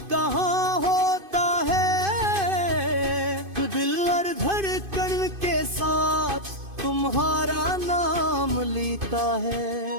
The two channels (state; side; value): late; left; 2.5 ms